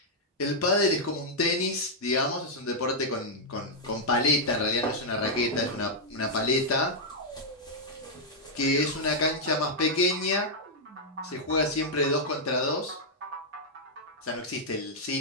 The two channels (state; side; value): normal; both; correlation -0.05